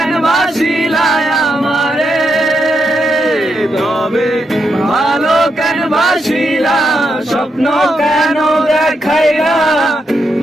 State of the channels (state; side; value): normal; both; correlation 0.82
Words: বাসিলা আমারে। তবে ভালো কেন বাসিলা, স্বপ্ন কেন দেখাইলা,